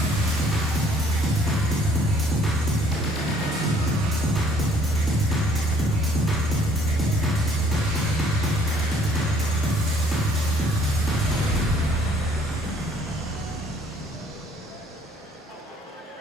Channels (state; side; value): normal; both; correlation 0.60